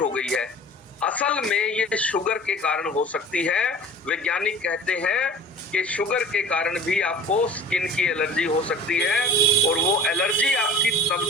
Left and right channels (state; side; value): normal; both; correlation 0.42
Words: गई है। असल में ये शुगर के कारण हो सकती है। वैज्ञानिक कहते हैं कि शुगर के कारण भी आपको स्किन की एलर्जी हो सकती है, और वो एलर्जी आपकी तब